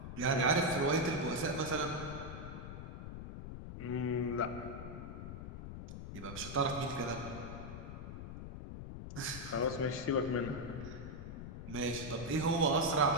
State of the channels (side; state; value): left; noise; rumble, 9 dB below the sound